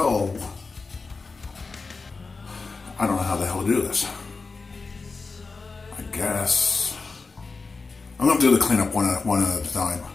I don't know how the hell to do this. I guess I'm going to do the cleanup one at a time.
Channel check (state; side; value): quieter; right; 4.2 dB